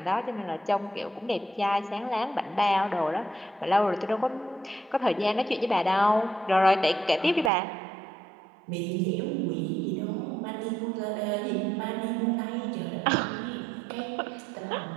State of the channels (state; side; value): drops out; left; at 7.5 s